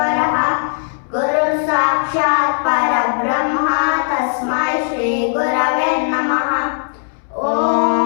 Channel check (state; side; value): silent; right; 68 dB below the other